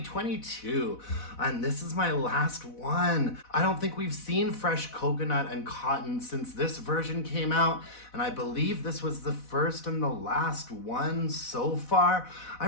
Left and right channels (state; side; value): late; right; 4.1 ms